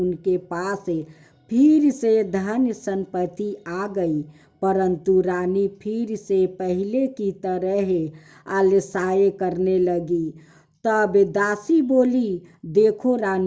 पास फिर से धन संपत्ति आ गई, परंतु रानी फिर से पहले की तरह आलसाए करने लगी। तब दासी बोली, देखो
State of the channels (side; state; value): both; identical; correlation 1.00